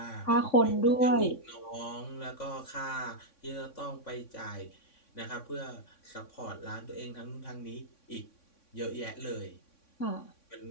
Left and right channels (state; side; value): late; right; 3.6 ms